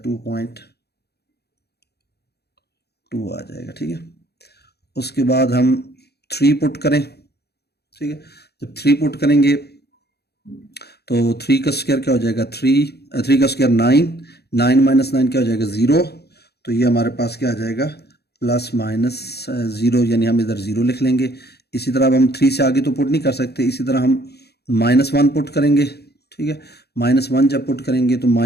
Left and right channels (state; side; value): late; right; 0.47 ms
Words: 2.2 आ जाएगा। ठीक है, उसके बाद हम 3 पुट करें। ठीक है, जब 3 पुट करेंगे तो 3 का स्क्वायर क्या हो जाएगा 3 का स्क्वायर 9 माइनस 9 क्या हो जाएगा 0, तो ये हमारे पास क्या आ जाएगा प्लस माइनस 0, यानी हम इधर 0 लिख लेंगे। इसी तरह अब हम 3 से आगे तो पुट नहीं कर सकते, इसी तरह हम -1 पुट करेंगे। ठीक है, -1 जब पुट करेंगे तो